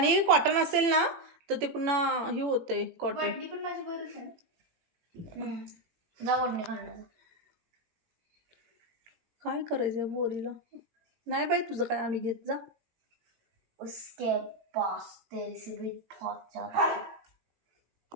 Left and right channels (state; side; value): late; left; 18 ms